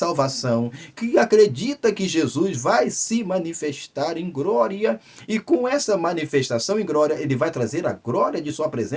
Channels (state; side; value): identical; both; correlation 1.00